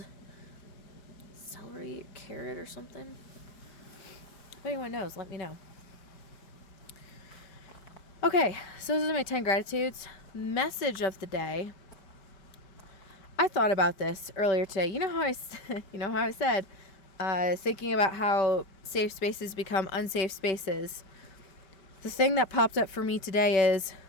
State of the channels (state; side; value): late; right; 5.2 ms